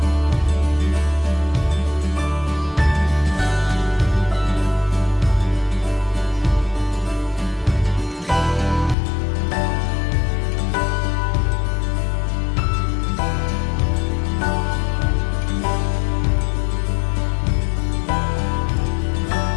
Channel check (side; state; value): right; drops out; at 9.0 s